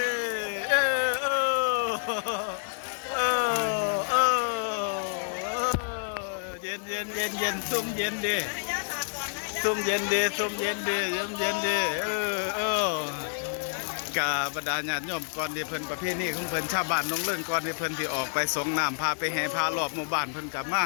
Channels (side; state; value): right; silent; digital silence